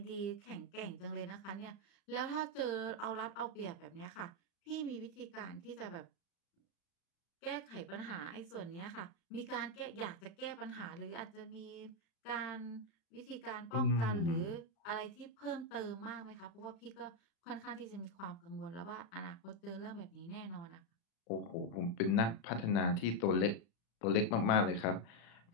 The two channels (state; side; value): late; right; 35 ms